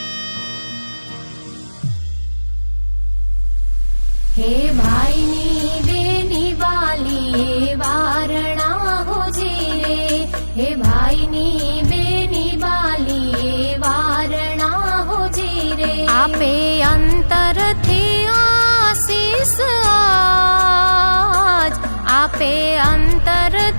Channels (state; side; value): inverted; both; correlation -1.00